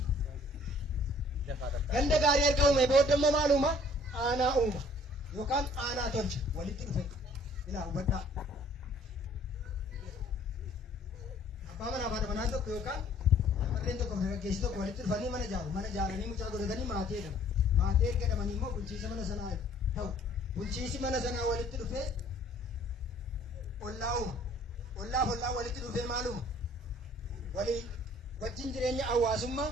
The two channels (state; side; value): normal; both; correlation 0.57